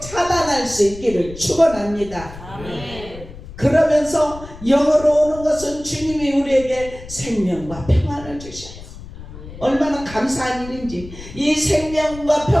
수 있기를 축원합니다. 아멘. 그러면서 영으로 오는 것은 주님이 우리에게 생명과 평안을 주셔요. 얼마나 감사한 일인지. 이 생명과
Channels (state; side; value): noise; left; rumble, 15 dB below the sound